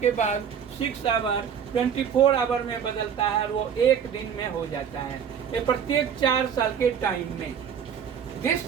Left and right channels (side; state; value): left; quieter; 7.8 dB